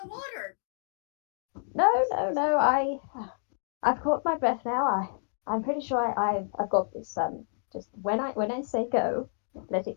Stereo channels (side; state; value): right; silent; digital silence